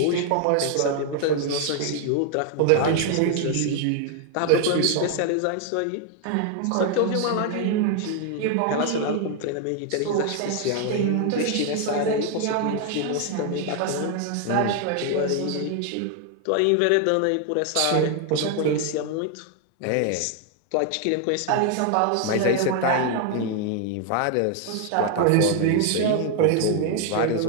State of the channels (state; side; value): different; both; correlation 0.00